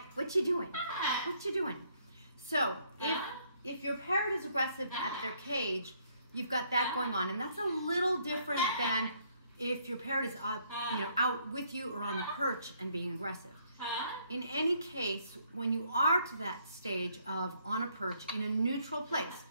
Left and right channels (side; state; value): both; inverted; correlation -0.68